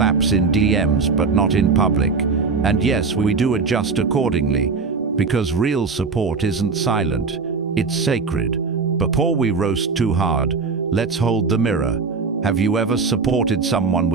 in DMs but not in public. And yes, we do adjust accordingly, because real support isn't silent, it's sacred. Before we roast too hard, let's hold the mirror. Have you ever supported someone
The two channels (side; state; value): left; quieter; 4.8 dB